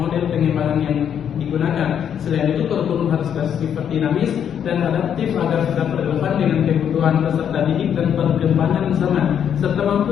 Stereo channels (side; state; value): right; quieter; 8.7 dB